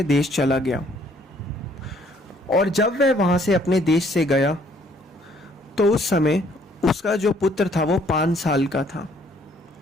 देश चला गया और जब वह वहाँ से अपने देश से गया तो उस समय उसका जो पुत्र था वो 5 साल का था।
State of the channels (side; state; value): both; normal; correlation 0.63